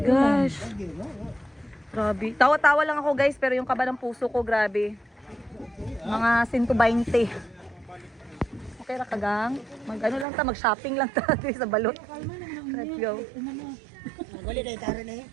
gosh. Grabe. Tawa-tawa lang ako, guys, pero yung kaba ng puso ko, grabe. Mga 120. Okay ra kagang. Mag-ano lang ta, mag-shopping lang ta sa Balot. Let's go. Wali na itara na eh.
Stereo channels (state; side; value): drops out; left; at 10.2 s